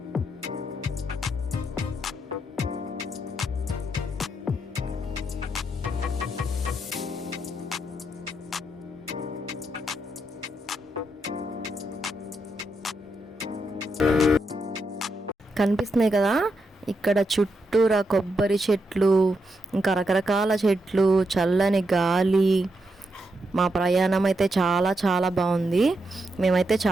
కనిపిస్తున్నాయి కదా, ఇక్కడ చుట్టూరా కొబ్బరి చెట్లు, ఇంకా రకరకాల చెట్లు, చల్లని గాలి. మా ప్రయాణం అయితే చాలా చాలా బాగుంది. మేమైతే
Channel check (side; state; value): both; normal; correlation 0.82